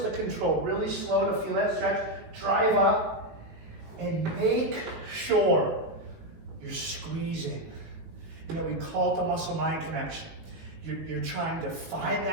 control, really slow to feel that stretch. Drive up and make sure you're squeezing. You know, we call it the muscle-mind connection. You're trying to find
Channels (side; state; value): left; late; 19 ms